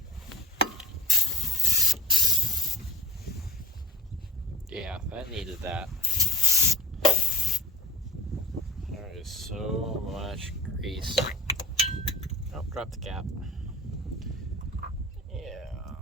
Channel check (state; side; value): normal; both; correlation 0.39